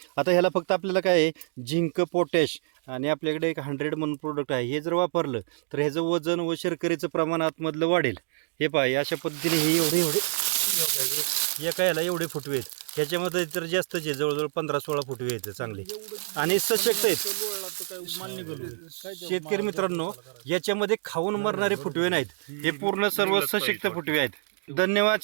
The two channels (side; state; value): left; silent; digital silence